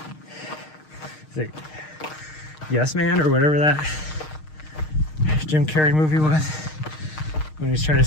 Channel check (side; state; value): right; late; 6.5 ms